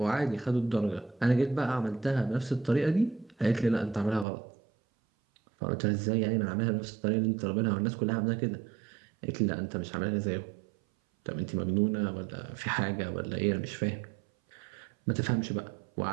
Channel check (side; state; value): left; drops out; at 4.2 s